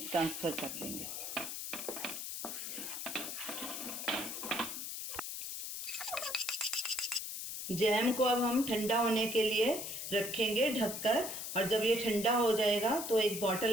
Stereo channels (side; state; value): left; noise; hiss, 5 dB below the sound